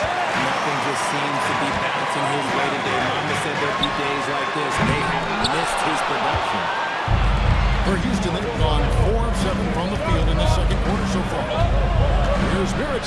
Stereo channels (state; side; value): identical; both; correlation 1.00